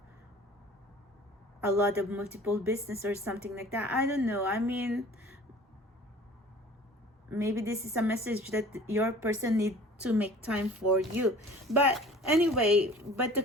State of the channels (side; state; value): both; normal; correlation 0.46